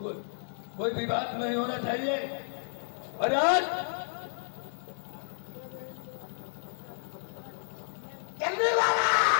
विवाद नहीं होना चाहिए। और आज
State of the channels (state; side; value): silent; right; digital silence